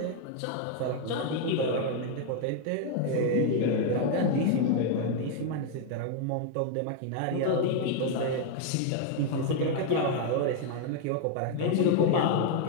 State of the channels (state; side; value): different; both; correlation 0.00